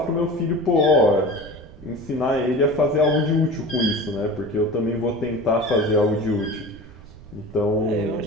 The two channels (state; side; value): noise; right; rumble, 19 dB below the sound